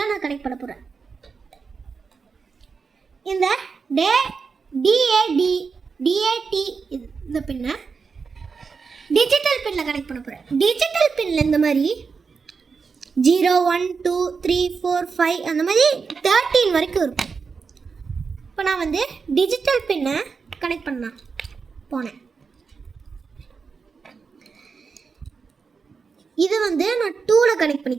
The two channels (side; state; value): left; quieter; 5.2 dB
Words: நான் கனெக்ட் பண்ண போகிறேன். இந்த DAT இந்த பின்னை டிஜிட்டல் பின்னில் கனெக்ட் பண்ண போகிறேன். டிஜிட்டல் பின்னில் இந்த மாதிரி 0, 1, 2, 3, 4, 5 அந்த மாதிரி 13 வரைக்கும் இருக்கும். இப்போ நான் வந்து டிஜிட்டல் பின்னை கனெக்ட் பண்ண போனேன். இது வந்து நான் 2ல் கனெக்ட்